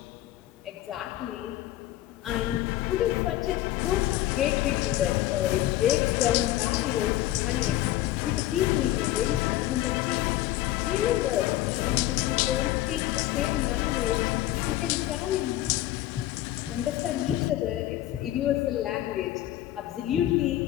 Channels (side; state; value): right; quieter; 14.5 dB